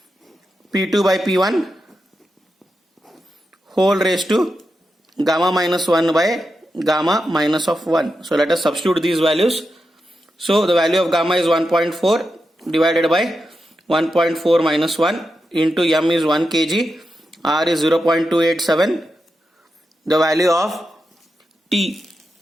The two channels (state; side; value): normal; both; correlation 0.88